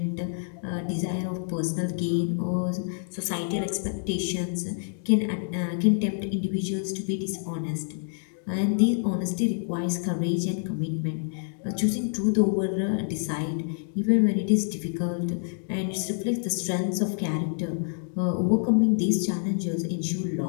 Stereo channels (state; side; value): silent; right; digital silence